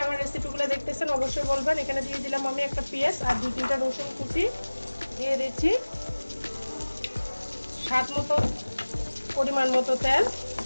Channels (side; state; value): both; inverted; correlation -1.00